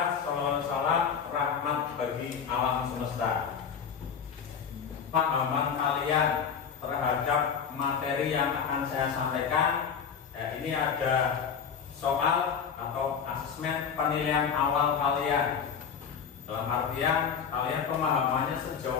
SAW rahmat bagi alam semesta. Pahaman kalian terhadap materi yang akan saya sampaikan, ya, ini ada soal atau asesmen penilaian awal kalian. Dalam artian kalian pemahamannya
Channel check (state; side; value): quieter; right; 7.0 dB